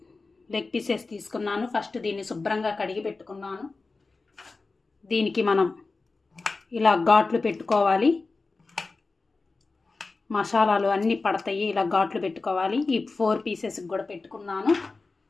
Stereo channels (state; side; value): quieter; right; 3.8 dB